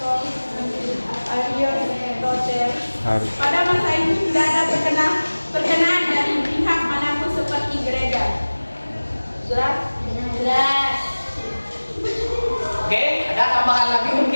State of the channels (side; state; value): both; inverted; correlation -1.00